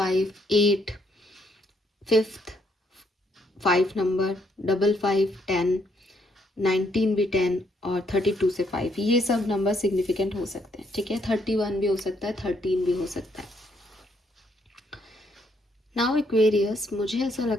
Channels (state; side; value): normal; both; correlation 0.72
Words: 8, 5th 5 नंबर, 55, 10, 19 भी 10 और 32 से 5, ये सब नंबर सिग्निफिकेंट हो सकते हैं। ठीक है, 31 भी हो सकता है, 13 भी हो सकता है। नाउ एक्वेरियस, मुझे ऐसा